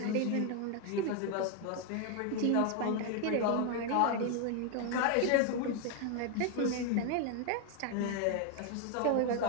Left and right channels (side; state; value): both; different; correlation 0.01